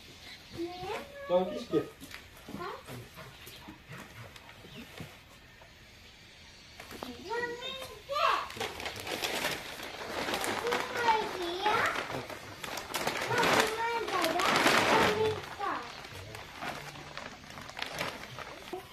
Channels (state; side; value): identical; both; correlation 1.00